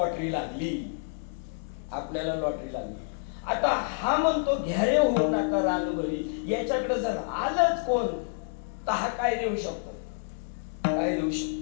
लागली, आपल्याला लॉटरी लागली. आता हा म्हणतो घ्यारे होऊ नका रानभरी, याच्याकडे जर आलंच कोण तर हा काय देऊ शकतो? काय देऊ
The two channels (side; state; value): right; silent; 59 dB below the other